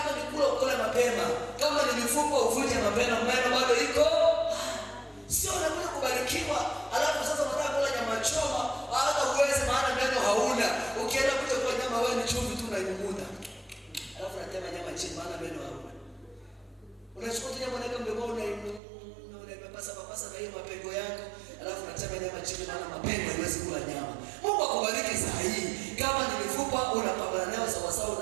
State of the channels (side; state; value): left; drops out; at 18.8 s